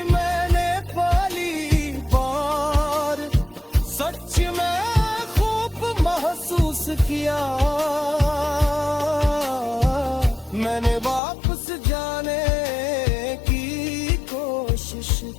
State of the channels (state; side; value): drops out; right; at 11.2 s